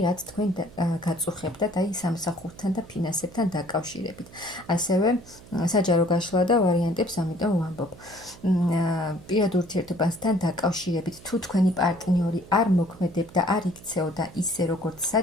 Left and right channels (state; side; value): noise; right; hum, 20 dB below the sound